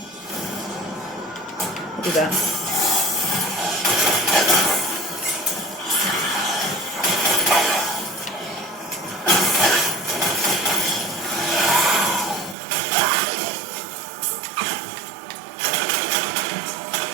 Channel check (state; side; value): drops out; left; at 12.6 s